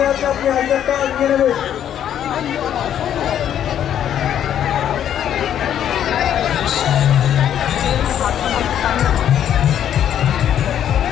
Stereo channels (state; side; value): quieter; right; 10.1 dB